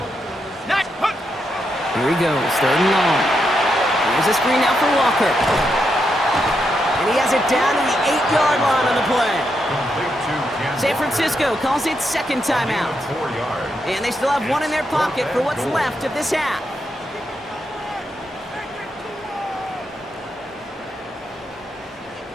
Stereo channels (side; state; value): both; normal; correlation 0.82